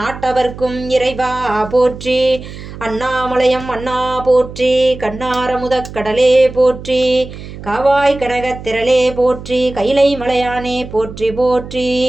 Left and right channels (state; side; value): noise; right; hum, 13 dB below the sound